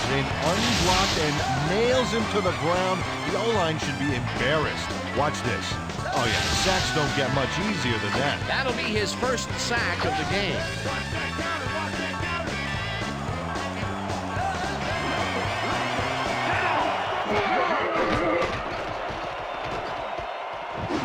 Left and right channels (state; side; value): identical; both; correlation 1.00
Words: in unblocked and nails him to the ground. The O-line should be embarrassed. Watch this. Oh, yeah, sacks don't get much easier than that. That'll be his first sack of the game.